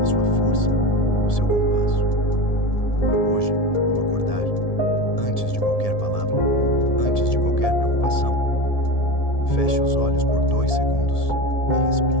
a sua força, o seu compasso. Hoje, ao acordar, antes de qualquer palavra, antes de qualquer preocupação, feche os olhos por 2 segundos e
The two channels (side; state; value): right; late; 1.7 ms